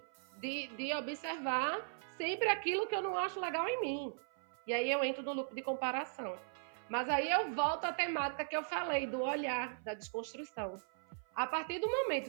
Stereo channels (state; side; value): silent; left; 52 dB below the other